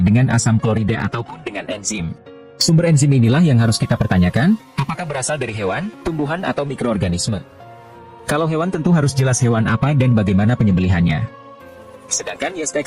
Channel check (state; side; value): identical; both; correlation 1.00